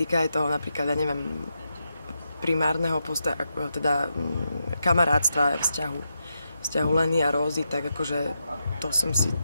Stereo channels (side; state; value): both; inverted; correlation -0.84